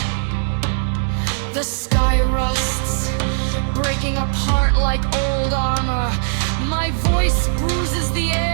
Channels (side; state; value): left; silent; 66 dB below the other